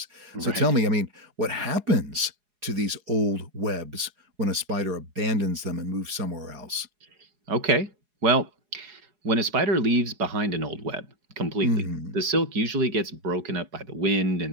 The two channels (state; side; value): late; left; 4.8 ms